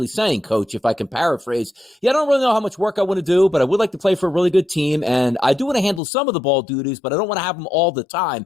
saying, Coach, if I can paraphrase, I don't really know how much work I want to do, but I would like to play for a really good team, and I do want to handle some of the ball duties, but I don't want to have them all the time.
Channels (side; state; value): right; drops out; at 6.0 s